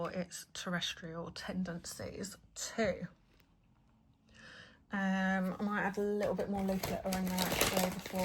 its terrestrial tendencies too. I might add a little bit more leaf litter in there actually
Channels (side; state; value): both; identical; correlation 1.00